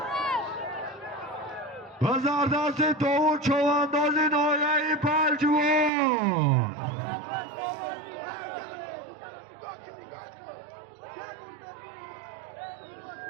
بزار دست داود چوانداز نویای پلجوان.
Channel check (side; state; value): left; drops out; at 5.9 s